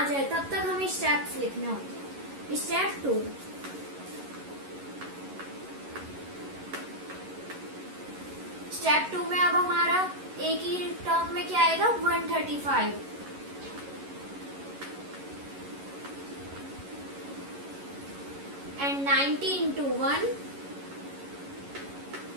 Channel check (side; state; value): left; late; 11 ms